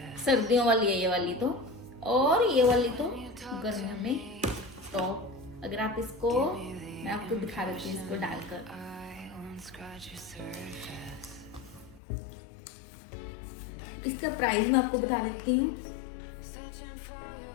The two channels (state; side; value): drops out; right; at 12.0 s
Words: सर्दियों वाली है ये वाली तो. और ये वाली तो गर्मियों में टॉप. अगर आप इसको, मैं आपको दिखा देती हूँ इसको डालकर. इसका प्राइस मैं आपको बता देती हूँ.